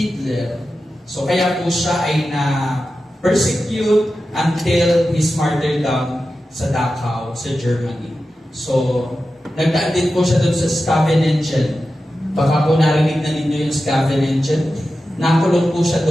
So kaya po siya ay na-persecute until his martyrdom sa Dachau, sa Germany. So, nagdaan din po siya doon sa Scavenengen. Baka po narinig na ninyo yung Scavenengen. Nakulong po siya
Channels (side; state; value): both; normal; correlation 0.92